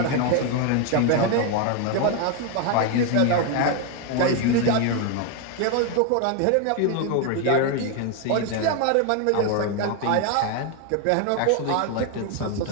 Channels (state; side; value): different; both; correlation 0.01